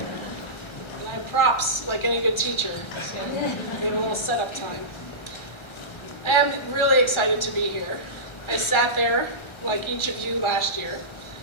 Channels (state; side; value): late; right; 1.3 ms